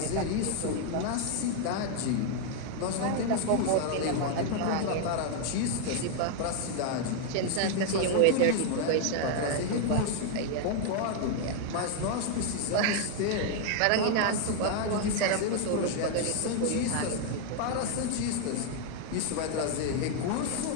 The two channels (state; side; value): different; both; correlation 0.00